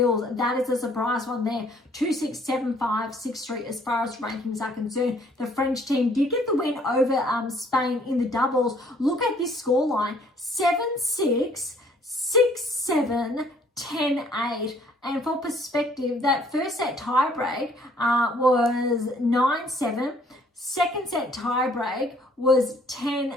That is a surprise one there, 2-6, 7-5, 6-3 as far as rankings are concerned. The French team did get the win over Spain in the doubles. Look at this scoreline, 7-6, 6-7, 10-8. And for perspective, that first set tiebreak was 9-7. Second set tiebreak was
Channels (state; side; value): normal; both; correlation 0.61